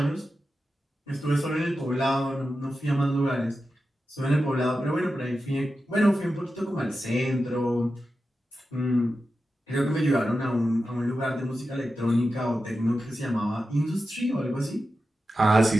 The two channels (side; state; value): both; normal; correlation 0.91